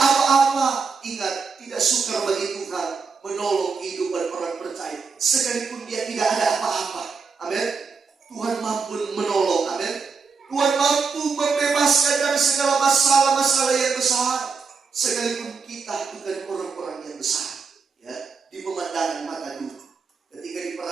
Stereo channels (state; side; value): quieter; left; 5.1 dB